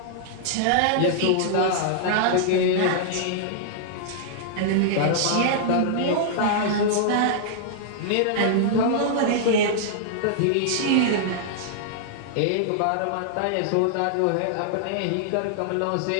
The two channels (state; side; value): different; both; correlation -0.01